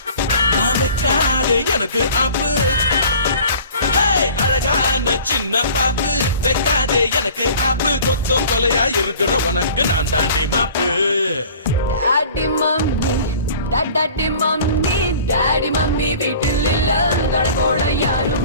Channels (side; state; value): both; inverted; correlation -0.46